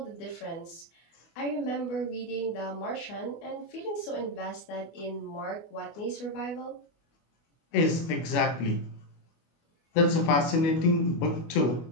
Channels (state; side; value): late; right; 24 ms